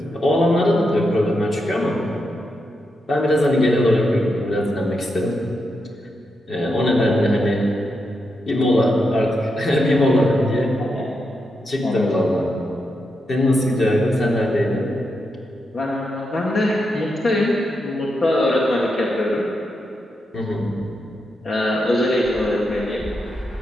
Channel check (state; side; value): normal; both; correlation 0.85